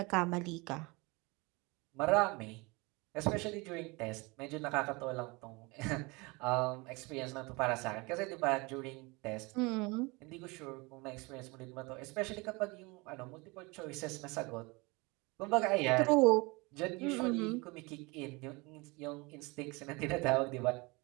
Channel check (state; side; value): quieter; left; 26.1 dB